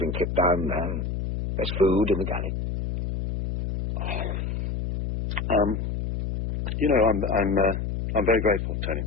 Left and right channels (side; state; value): left; noise; hum, 3 dB below the sound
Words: kit down there. There's food in the galley. I'm very grateful, Tony.